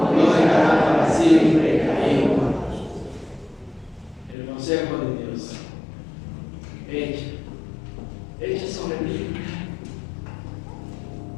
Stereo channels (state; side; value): drops out; right; at 4.4 s